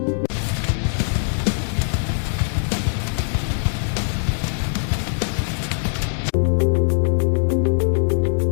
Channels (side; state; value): right; silent; digital silence